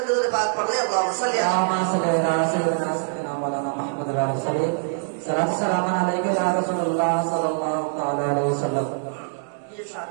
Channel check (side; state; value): left; silent; digital silence